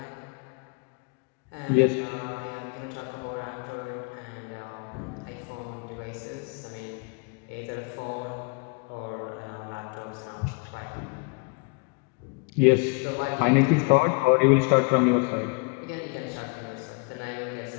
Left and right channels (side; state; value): right; quieter; 32.0 dB